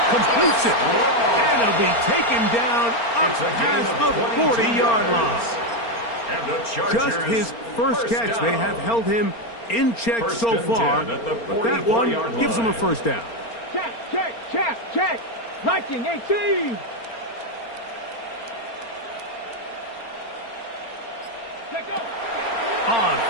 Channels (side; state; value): right; late; 4.3 ms